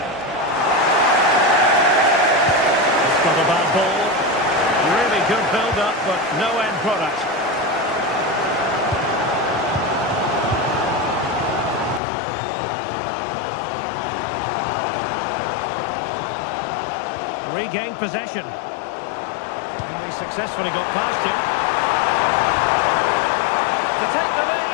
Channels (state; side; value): drops out; right; at 12.0 s